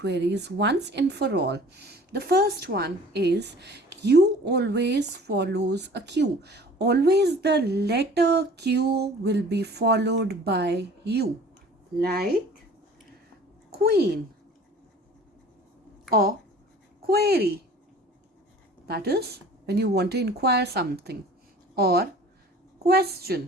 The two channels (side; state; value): both; normal; correlation 0.47